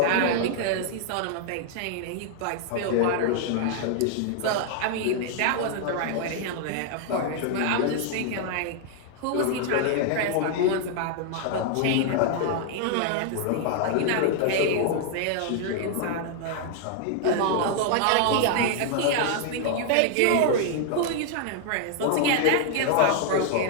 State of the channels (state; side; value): different; both; correlation 0.00